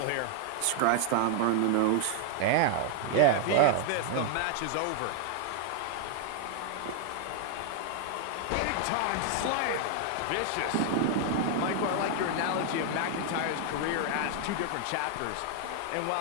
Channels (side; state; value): both; different; correlation 0.00